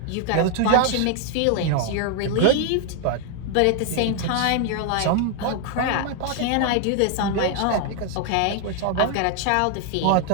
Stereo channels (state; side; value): different; both; correlation 0.00